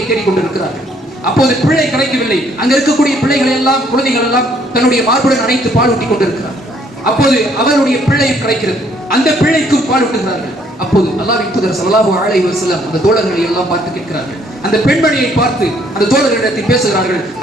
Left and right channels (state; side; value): normal; both; correlation 0.65